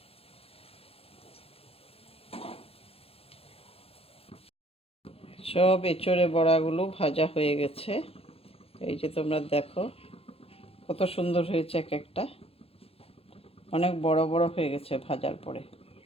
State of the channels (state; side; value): late; right; 0.28 ms